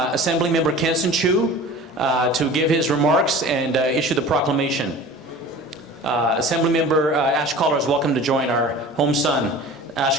Member Kansan Chu to give his remarks and issue the proclamation. Assembly Member Ash Cholera is welcome to join our home son. Ash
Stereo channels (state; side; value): normal; both; correlation 0.40